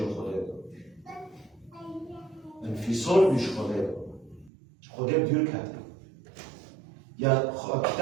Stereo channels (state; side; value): drops out; left; at 4.5 s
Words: خوده انفصال بيجي خوده بدير كده يا